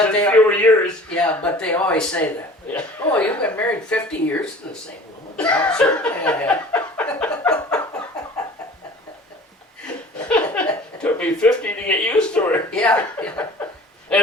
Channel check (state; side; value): normal; both; correlation 0.44